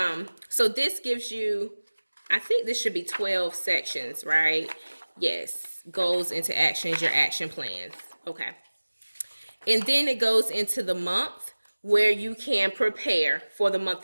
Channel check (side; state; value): both; inverted; correlation -1.00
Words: so this gives you, I think this should be 12 sections, right? Yes. Goals into actions, your action plans. Okay. And then it goes into the month where you can prepare for the